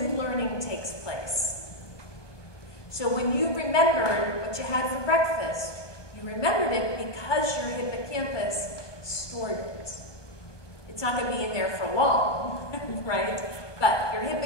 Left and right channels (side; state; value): right; late; 1.2 ms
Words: learning takes place. So when you remembered what you had for breakfast, you remembered it because your hippocampus stored it. It's not going to be in there for long, right? But your